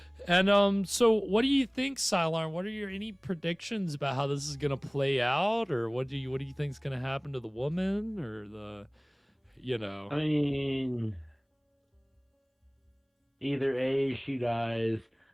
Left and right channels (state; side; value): identical; both; correlation 1.00